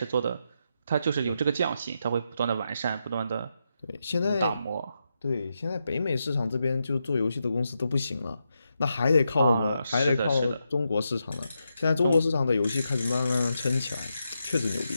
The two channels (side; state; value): both; inverted; correlation -0.85